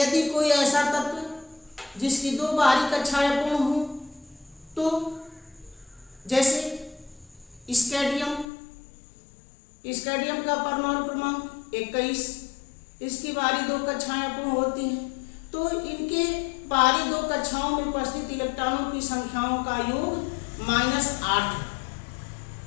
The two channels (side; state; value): right; drops out; at 8.5 s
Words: कोई ऐसा तत्व जिसकी दो बाहरी कक्षाएं अपूर्ण हो, तो जैसे स्कैंडियम का परमाणु क्रमांक 21, इसकी बाहरी दो कक्षाएं अपूर्ण होती हैं, तो इनके बाहरी दो कक्षाओं में उपस्थित इलेक्ट्रॉनों की संख्याओं का योग -8।